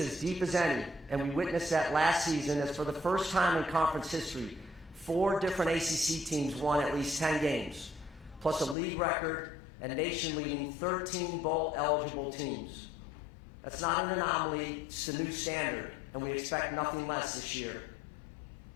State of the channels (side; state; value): right; drops out; at 8.8 s